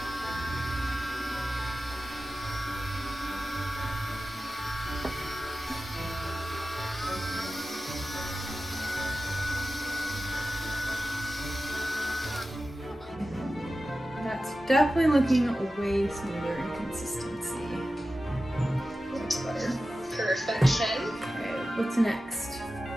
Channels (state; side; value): normal; both; correlation 0.94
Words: That's definitely looking way smoother in consistency. That's better. Perfection. Okay, what's next?